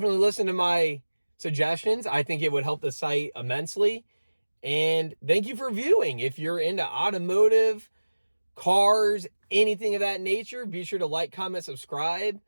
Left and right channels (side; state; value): both; inverted; correlation -1.00